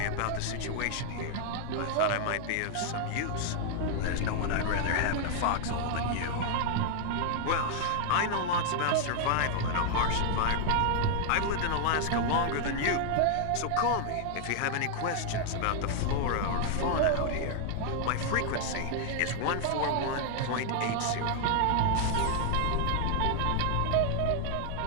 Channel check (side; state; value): both; different; correlation 0.00